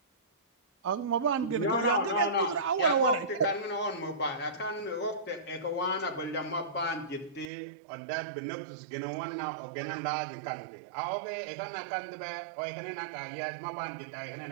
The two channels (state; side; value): drops out; left; at 7.5 s